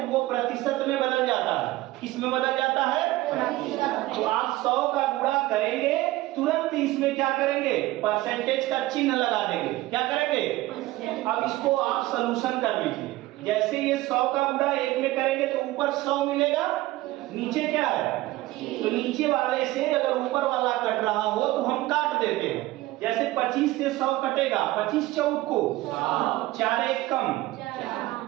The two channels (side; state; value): left; quieter; 17.7 dB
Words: वो प्रतिशत में बदल जाता है। किस में बदल जाता है? प्रतिशत में। तो आप 100 का गुणा करेंगे, तुरंत इसमें क्या करेंगे? परसेंटेज का चिन्ह लगा देंगे। क्या करेंगे? अब इसको आप सॉल्यूशन कर लीजिए। जैसे ये 100 का गुणा 1 में करेंगे तो ऊपर 100 मिलेगा, नीचे क्या है? तो नीचे वाले से अगर ऊपर वाला कट रहा हो तो हम काट देते हैं। जैसे 25 से 100 कटेगा, 25 चौक को 4 1 कम,